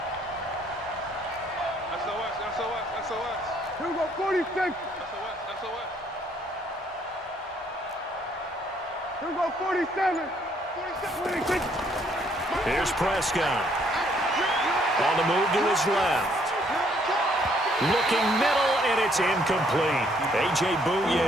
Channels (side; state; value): both; normal; correlation 0.67